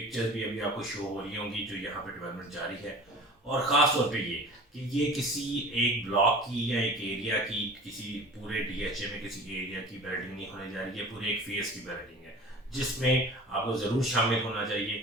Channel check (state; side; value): normal; both; correlation 0.41